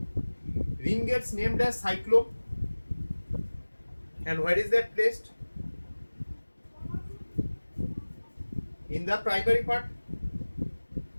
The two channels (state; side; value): inverted; both; correlation -1.00